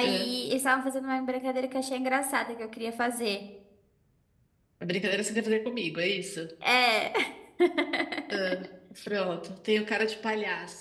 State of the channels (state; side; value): identical; both; correlation 1.00